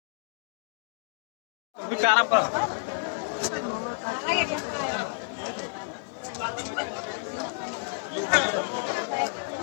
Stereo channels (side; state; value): right; silent; 56 dB below the other